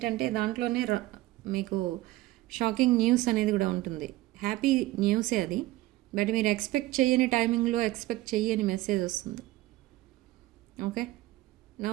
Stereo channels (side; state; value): left; quieter; 17.5 dB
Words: దాంట్లోనే మీకు షాకింగ్ న్యూస్ అనేది కూడా ఉంటుంది. హ్యాపీ న్యూసే అది, బట్ మీరు ఎక్స్పెక్ట్ చేయని టైమింగ్లో ఎక్స్పెక్ట్ చేయని మెసేజ్ వస్తుంది. Okay,